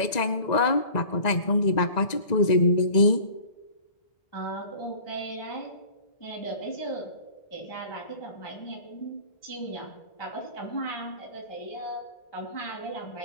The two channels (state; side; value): late; right; 1.9 ms